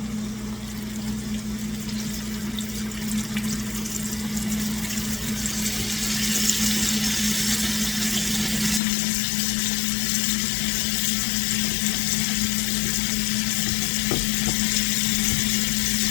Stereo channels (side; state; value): right; drops out; at 8.8 s